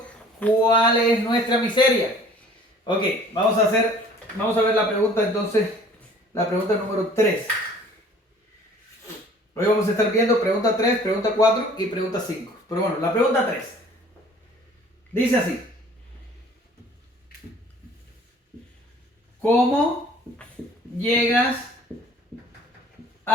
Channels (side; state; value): both; normal; correlation 0.52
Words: cuál es nuestra miseria. Ok, vamos a ver la pregunta entonces, la pregunta número 3. Hoy vamos a estar viendo pregunta 3, pregunta 4 y pregunta 5. Pero bueno, la pregunta 3 dice así. ¿Cómo llegas